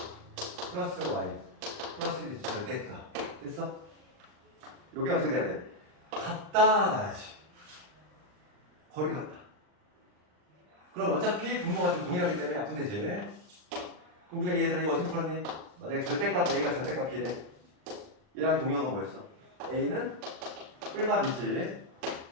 플러스 y 플러스 1이 절대값. 됐어? 요게 어떻게 돼야 돼? 같다 나야지. 거리 같다. 그럼 어차피 분모가 지금 동일하기 때문에 약분되지. 그럼 우리가 얘들아 이거 어떻게 풀었니? 만약에 절대값 A가 절대값 B래. 얘랑 동형은 뭐였어? A는 뿔마B지.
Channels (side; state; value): left; late; 39 ms